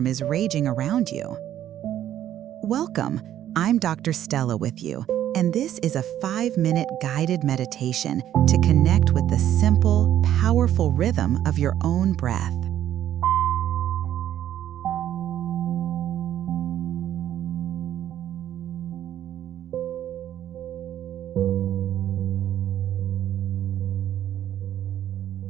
is raging around you. Welcome, I'm Dr. Stella with you, and this is a 5-minute guided meditation to connect with the simple, powerful rhythm of your own breath.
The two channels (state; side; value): quieter; left; 11.4 dB